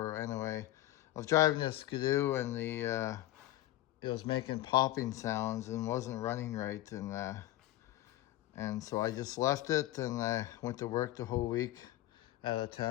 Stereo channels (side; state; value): right; quieter; 15.4 dB